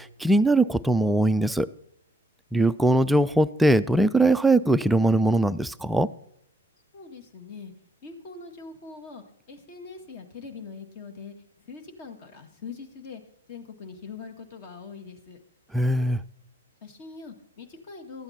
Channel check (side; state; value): both; normal; correlation 0.83